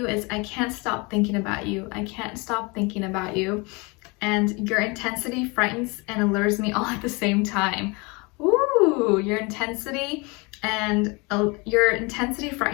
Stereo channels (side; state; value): right; quieter; 28.0 dB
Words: is, I can't stop thinking about you. I can't stop thinking about you. And your intensity frightens and allures me all at the same time. Ooh, your intensity